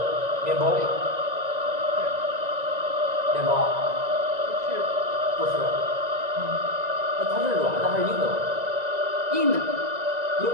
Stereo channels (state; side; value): late; left; 1.9 ms